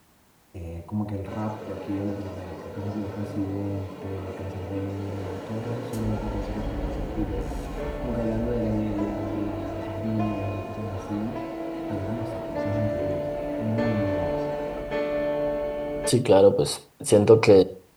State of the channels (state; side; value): identical; both; correlation 1.00